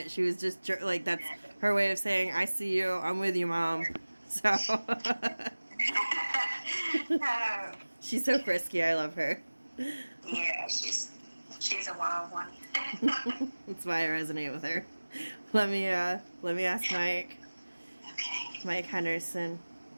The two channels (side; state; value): both; inverted; correlation -1.00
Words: She was just like, that's her way of saying, I see you, I'm with you, Mom. So she's so frisky, I love her. Yeah, she's a wild one. That's why I resonate with her. Let me ask Mike. Okay. Mike Henderson.